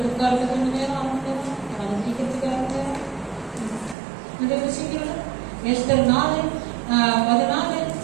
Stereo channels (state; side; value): drops out; left; at 4.0 s